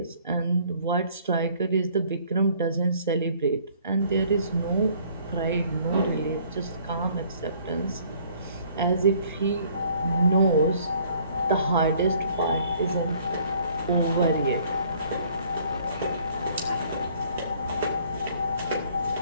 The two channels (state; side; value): inverted; both; correlation -0.58